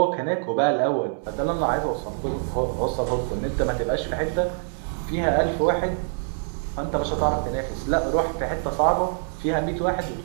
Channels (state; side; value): silent; left; 62 dB below the other